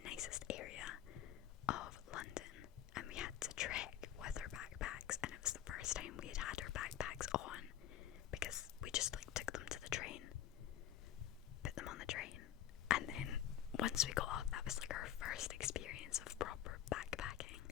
nicest area of London, and we had to trek with our backpacks, and it was the first time we had had our backpacks on, because we just like took them to the train, put them on the train, and then once we got off, that was like our first experience of proper backpacking.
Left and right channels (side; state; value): right; quieter; 11.4 dB